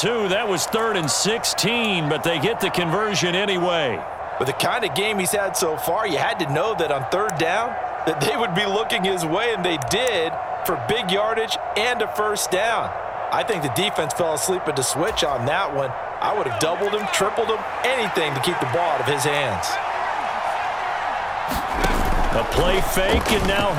That was 3rd and 16, but they get the conversion anyway. With the kind of game he's had so far, you had to know that on 3rd down, that they would be looking his way, and they did, for big yardage and a first down. I think the defense fell asleep at the switch on that one. I would have doubled him, tripled him, anything to keep the ball out of his hands. A play fake, and now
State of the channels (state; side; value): identical; both; correlation 1.00